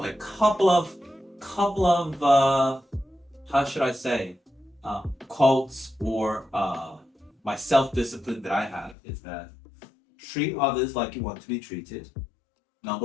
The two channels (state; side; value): drops out; right; at 9.0 s